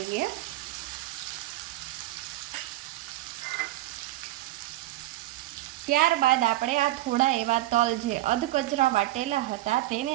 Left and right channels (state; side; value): quieter; left; 16.3 dB